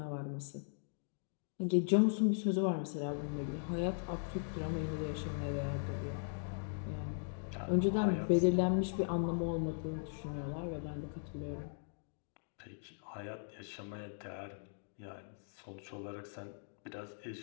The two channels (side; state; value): right; silent; digital silence